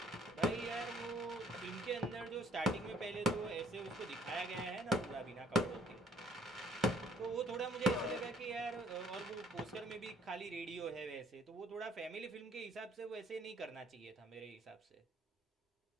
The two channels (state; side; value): normal; both; correlation 0.60